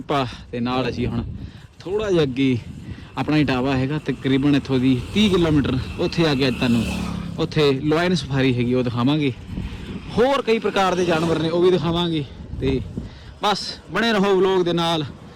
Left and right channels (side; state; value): both; identical; correlation 1.00